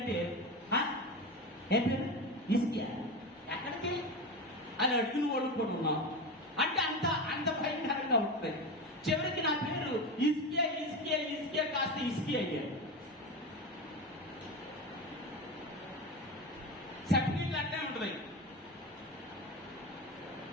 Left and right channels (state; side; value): normal; both; correlation 0.22